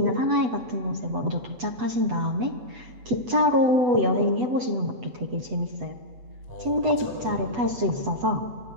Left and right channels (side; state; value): left; late; 8.1 ms